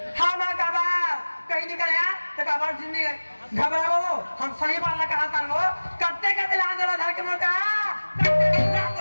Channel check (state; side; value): inverted; both; correlation -1.00